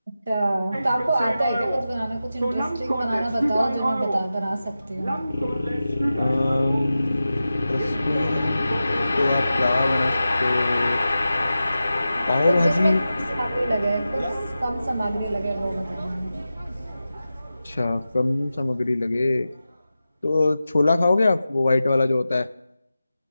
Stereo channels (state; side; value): inverted; both; correlation -0.93